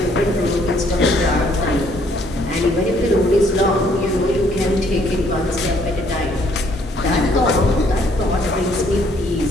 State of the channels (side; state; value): both; normal; correlation 0.65